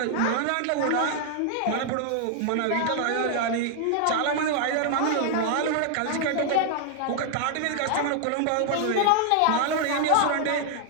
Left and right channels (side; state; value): both; different; correlation 0.00